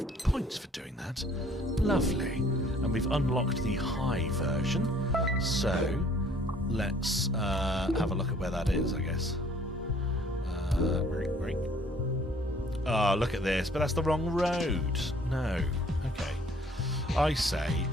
points for doing that. Lovely. And we've unlocked the high version, so let's have a look at where that is, I guess. Great. Oh, look at this, but that's the wrong road. No. Okay. I say,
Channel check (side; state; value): both; normal; correlation 0.57